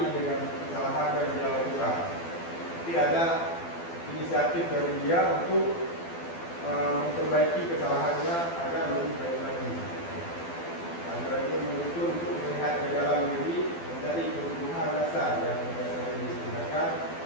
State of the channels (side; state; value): right; late; 12 ms